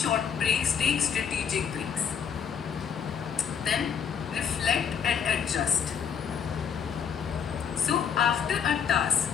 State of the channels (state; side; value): quieter; right; 7.4 dB